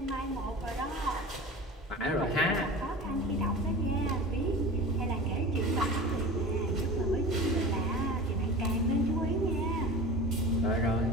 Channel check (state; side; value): normal; both; correlation 0.35